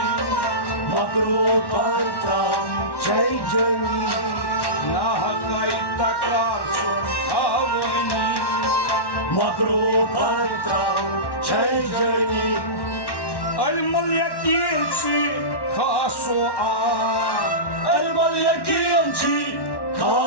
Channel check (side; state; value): right; late; 1.1 ms